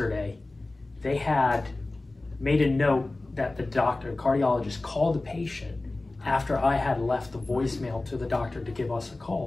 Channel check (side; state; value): right; quieter; 3.0 dB